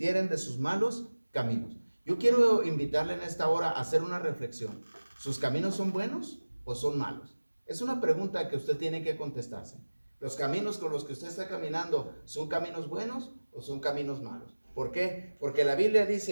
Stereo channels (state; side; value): inverted; both; correlation -1.00